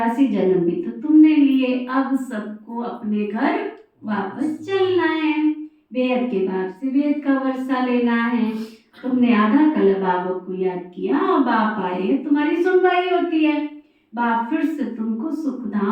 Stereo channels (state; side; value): identical; both; correlation 1.00